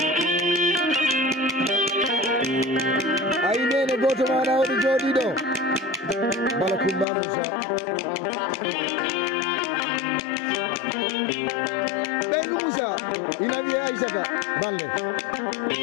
ayi nene goto maɗa oɗo jooɗi ɗo bala Kumba Moussa ɓeygu Moussa ina wiye Aissata Balle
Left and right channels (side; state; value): right; drops out; at 7.1 s